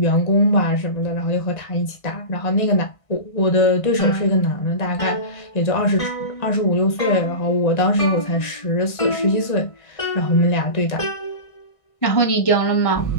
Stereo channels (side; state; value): right; late; 1.5 ms